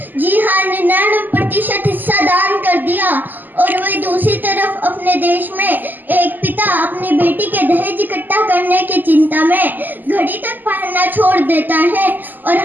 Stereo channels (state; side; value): late; left; 0.087 ms